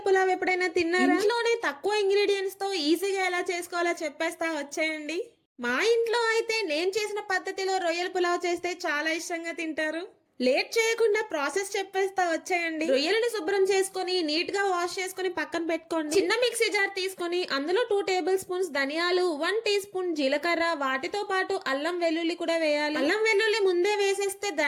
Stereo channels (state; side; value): identical; both; correlation 1.00